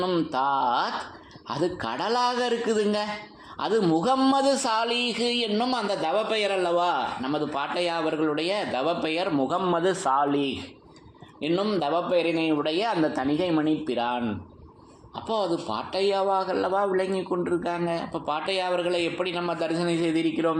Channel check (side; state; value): both; identical; correlation 1.00